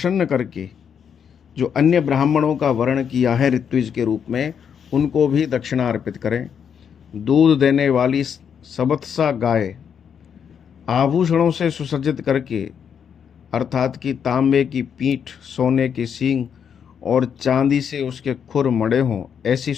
करके जो अन्य ब्राह्मणों का वर्ण किया है ऋत्विज के रूप में, उनको भी दक्षिणा अर्पित करें। दूध देने वाली सबत्सा गाय आभूषणों से सुसज्जित करके अर्थात कि तांबे की पीठ, सोने के सींग और चांदी से उसके खुर मड़े हों, ऐसी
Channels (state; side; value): quieter; right; 7.6 dB